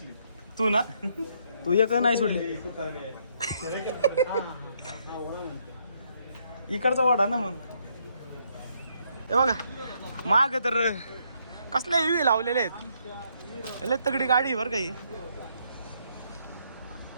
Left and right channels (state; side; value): inverted; both; correlation -0.72